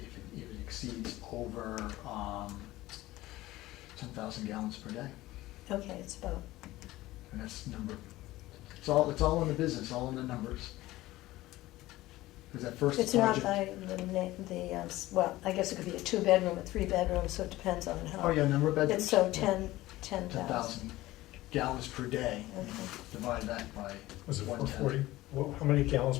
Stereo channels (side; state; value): right; quieter; 17.3 dB